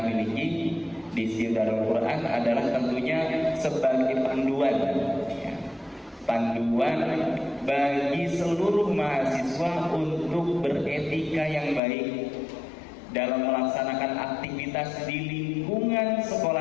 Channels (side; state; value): right; drops out; at 11.8 s